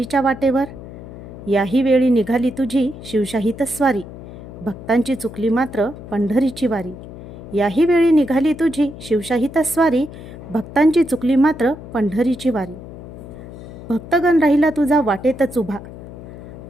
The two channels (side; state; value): left; noise; hum, 14 dB below the sound